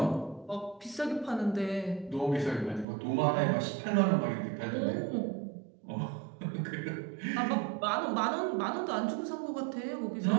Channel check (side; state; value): left; drops out; at 2.9 s